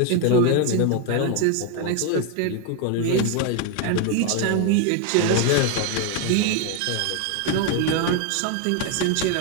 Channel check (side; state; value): both; different; correlation 0.01